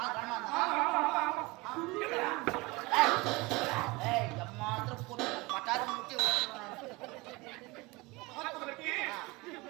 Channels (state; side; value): quieter; left; 23.6 dB